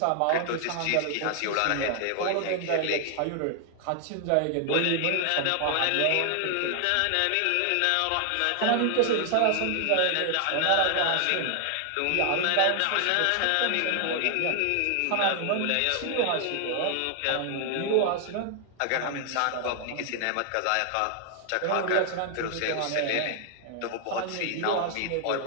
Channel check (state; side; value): different; both; correlation 0.00